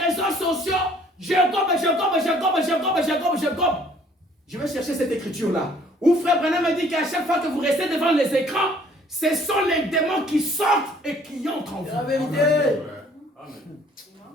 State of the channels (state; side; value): normal; both; correlation 0.58